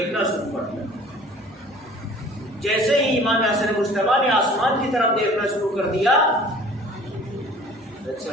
شروع کر دیا۔ جیسے ہی امام حسن مجتبی نے آسمان کی طرف دیکھنا شروع کر دیا،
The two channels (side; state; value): both; normal; correlation 0.48